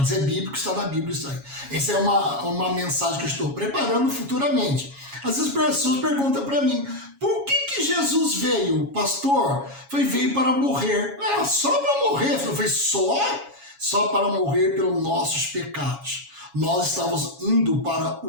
É bíblico, está na Bíblia isso aí. Essa é uma mensagem que eu estou preparando futuramente. Às vezes as pessoas perguntam para mim, por que Jesus veio? Pastor, veio para morrer. Ah, só para morrer? Foi só para morrer pelos nossos pecados. Nós estávamos indo para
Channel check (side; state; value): left; late; 7.2 ms